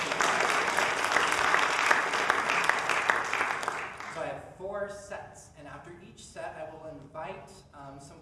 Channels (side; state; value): both; identical; correlation 1.00